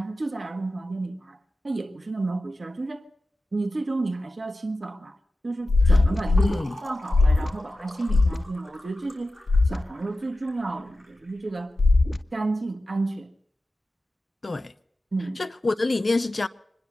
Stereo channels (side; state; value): both; normal; correlation 0.94